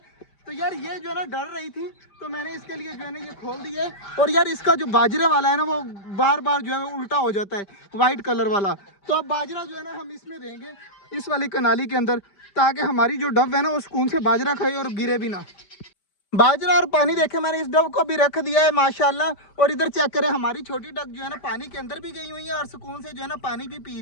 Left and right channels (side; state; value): right; late; 5.1 ms